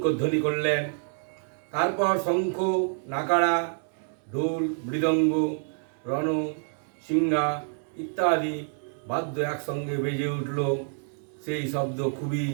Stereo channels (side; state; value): left; silent; 60 dB below the other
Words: করলেন। তারপর শঙ্খ, নাগাড়া, ঢোল, মৃদঙ্গ, রণ, সিংহা ইত্যাদি বাদ্য একসঙ্গে বেজে উঠল। সেই শব্দ খুবই